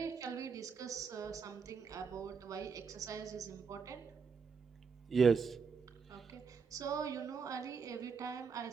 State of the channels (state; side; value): quieter; left; 5.7 dB